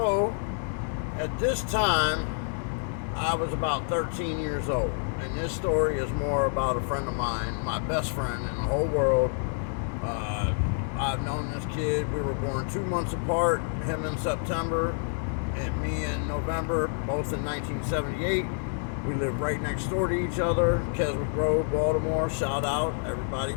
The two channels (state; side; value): silent; right; digital silence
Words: at this time, I was about 13 years old, and this story is more about a friend of mine, my best friend in the whole world. I've known this kid. We were born 2 months apart, him in September and me in November, both in 1978. We live right next door to each other, Keswick Road, Baltimore. Shout out, everybody,